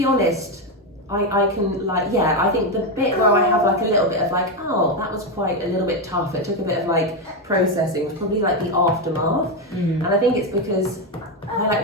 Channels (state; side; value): normal; both; correlation 0.08